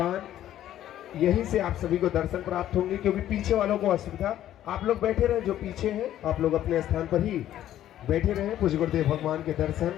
यहीं से आप सभी को दर्शन प्राप्त होंगे, क्योंकि पीछे वालों को असुविधा। आप लोग बैठे रहे, जो पीछे हैं आप लोग अपने स्थान पर ही बैठे रहे। पूज्य गुरुदेव भगवान के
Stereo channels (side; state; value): right; quieter; 12.2 dB